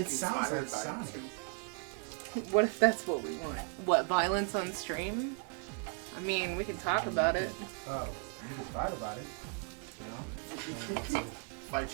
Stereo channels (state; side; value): quieter; left; 39.1 dB